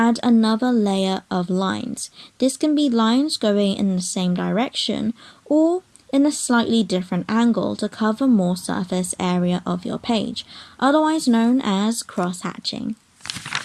another layer of lines. This can be lines going in the same direction or in a slightly different angle to cover more surface area of your page, otherwise known as cross-hatching.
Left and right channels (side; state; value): both; identical; correlation 1.00